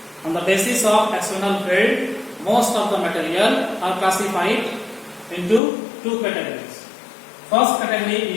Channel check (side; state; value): right; drops out; at 5.6 s